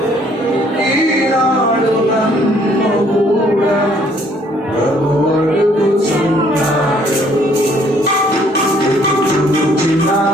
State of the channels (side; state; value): both; normal; correlation 0.63